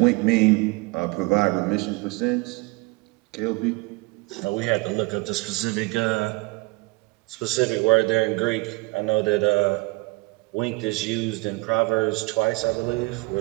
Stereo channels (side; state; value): left; quieter; 24.8 dB